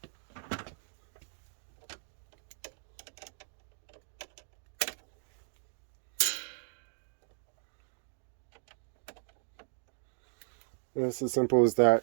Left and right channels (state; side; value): silent; left; digital silence